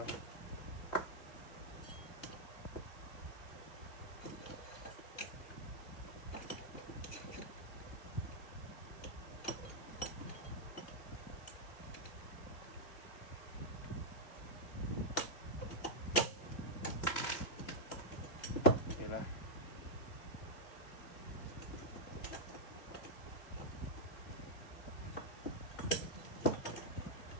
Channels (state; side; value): late; right; 2.7 ms